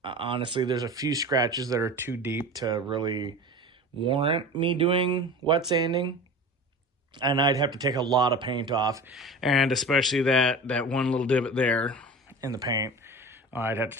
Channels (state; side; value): normal; both; correlation 0.34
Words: honestly, there's a few scratches that are too deep to really warrant me doing wet sanding. And I'd have to take a lot of paint off. And especially that one little divot there in the paint, I'd have to